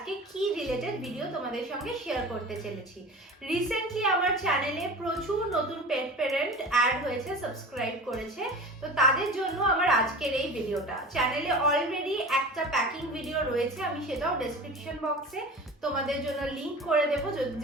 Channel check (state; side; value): normal; both; correlation 0.35